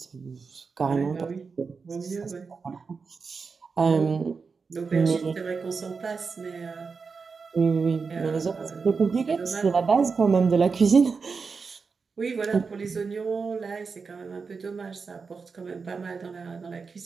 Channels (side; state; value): left; quieter; 5.0 dB